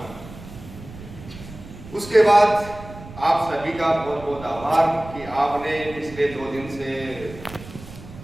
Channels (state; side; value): noise; right; rumble, 16 dB below the sound